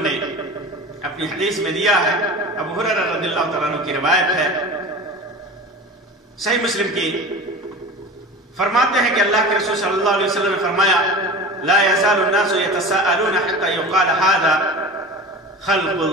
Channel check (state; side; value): normal; both; correlation 0.33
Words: نے اپنی حدیث میں دیا ہے۔ ابو ہریرہ رضی اللہ تعالیٰ عنہ کی روایت ہے، صحیح مسلم کی، فرماتے ہیں کہ اللہ کے رسول صلی اللہ علیہ وسلم نے فرمایا لا يزال الناس يتساءلون حتى يقال هذا خلق